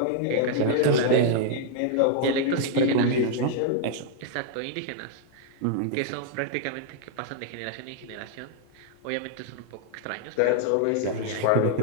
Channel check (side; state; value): both; different; correlation -0.01